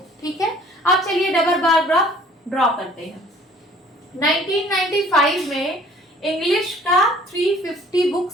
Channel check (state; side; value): normal; both; correlation 0.53